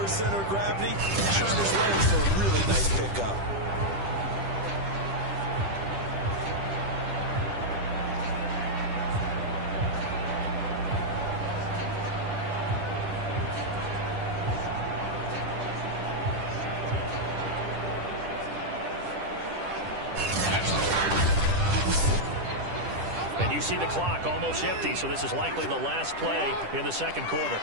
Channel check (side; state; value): left; late; 10 ms